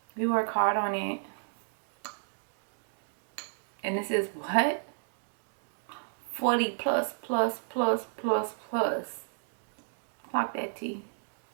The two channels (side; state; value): left; silent; digital silence